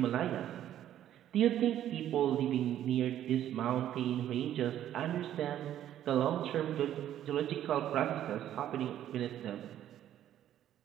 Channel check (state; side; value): quieter; left; 11.5 dB